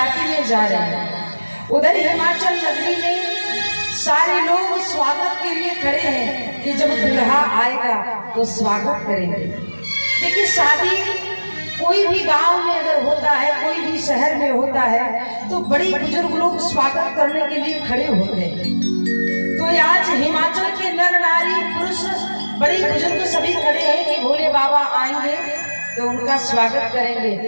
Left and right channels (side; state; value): both; inverted; correlation -1.00